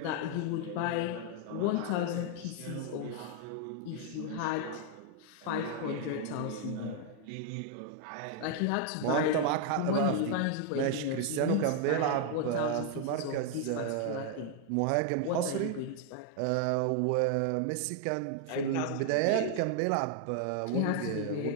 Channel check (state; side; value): different; both; correlation 0.00